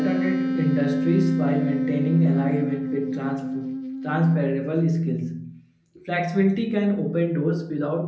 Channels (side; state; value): both; identical; correlation 1.00